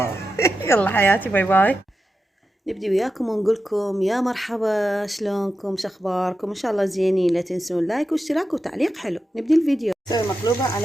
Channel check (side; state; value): both; normal; correlation 0.90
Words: يلا حياتي، باي باي. نبدي وياكم ونقول لكم يا مرحبا، شلونكم، شخباركم؟ ان شاء الله زينين. لا تنسون لايك واشتراك وتعليق حلو. نبدي الفيديو. نسوي مقلوبة